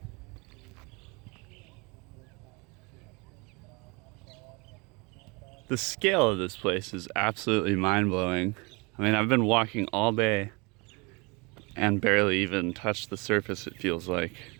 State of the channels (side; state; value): left; quieter; 28.4 dB